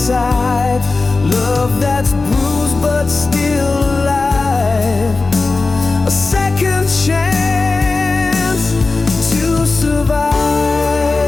Love that's bruised but still alive. A second chance to survive.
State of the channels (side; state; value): right; quieter; 3.7 dB